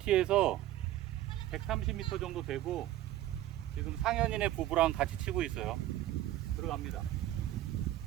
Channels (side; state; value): left; quieter; 14.0 dB